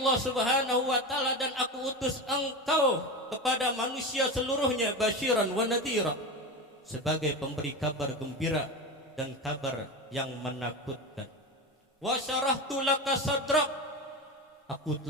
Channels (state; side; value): normal; both; correlation 0.23